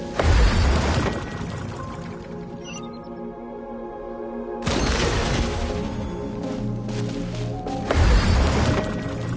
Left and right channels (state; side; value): identical; both; correlation 1.00